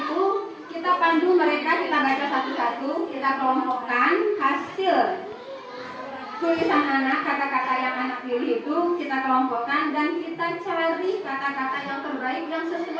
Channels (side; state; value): both; identical; correlation 1.00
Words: kita pandu mereka, kita baca satu-satu, kita kelompokkan hasil tulisan anak, kata-kata yang anak pilih itu kita kelompokkan dan kita cari kata-kata yang terbaik yang